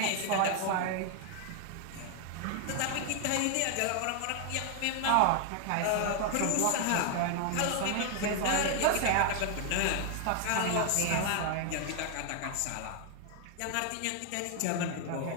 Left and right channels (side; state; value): both; different; correlation 0.00